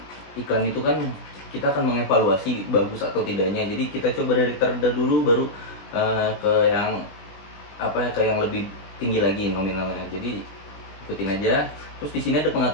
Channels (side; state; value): right; late; 20 ms